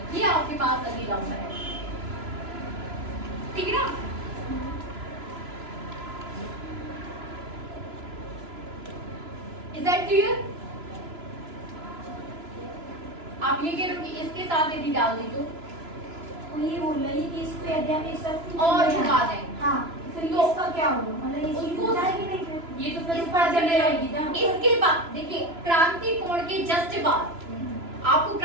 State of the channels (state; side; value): late; left; 3.0 ms